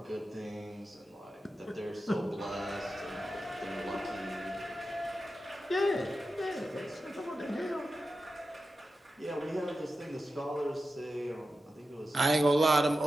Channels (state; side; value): normal; both; correlation 0.91